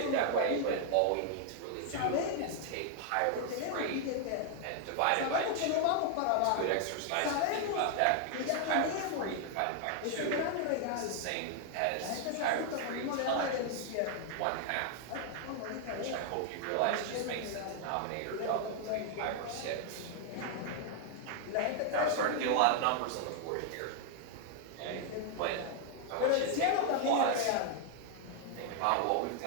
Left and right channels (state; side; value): different; both; correlation 0.00